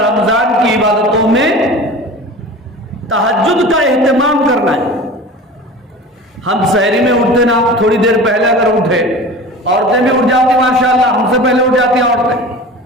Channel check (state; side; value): normal; both; correlation 0.37